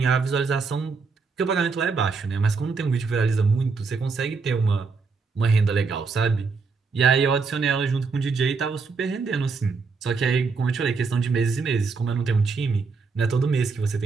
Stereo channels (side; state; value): left; quieter; 4.7 dB